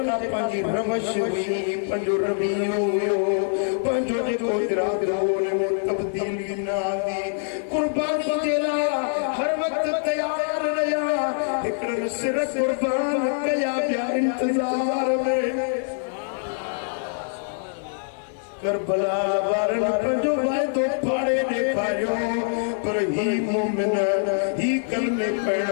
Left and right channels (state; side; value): silent; right; 62 dB below the other